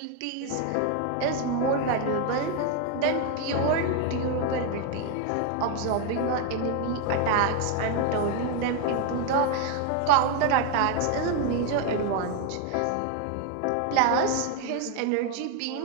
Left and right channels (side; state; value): both; different; correlation 0.01